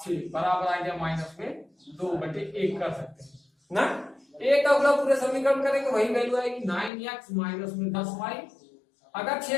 6 बराबर आ गया माइनस में 2/1 कर सकते हैं ना। एक का गुणा पूरे समीकरण करेंगे वही वैल्यू आएगी 9x माइनस में 10y। अगर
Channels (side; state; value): right; drops out; at 6.9 s